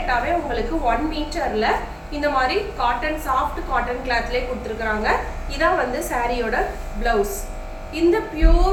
உங்களுக்கு 1 மீட்டர்ல இந்த மாதிரி காட்டன் சாஃப்ட் காட்டன் கிளாத்லேயே கொடுத்துருக்குறாங்க. இதான் வந்து சாரியோட பிளவுஸ். இந்த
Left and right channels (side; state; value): both; identical; correlation 1.00